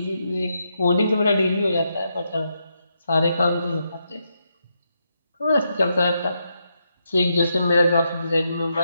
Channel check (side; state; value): both; inverted; correlation -0.82